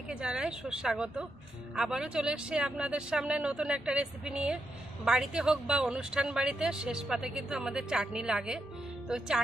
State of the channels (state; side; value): normal; both; correlation 0.83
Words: জানাই সুস্বাগত। আবারও চলে এসেছি আপনাদের সামনে নতুন একটা রেসিপি নিয়ে। বাড়িতে হোক বা অনুষ্ঠান বাড়িতে শেষ পাতে কিন্তু আমাদের চাটনি লাগে। তো